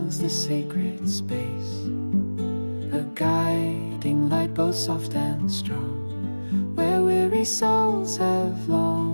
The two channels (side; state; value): both; inverted; correlation -1.00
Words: the sacred space, a guiding light both soft and strong, where weary souls have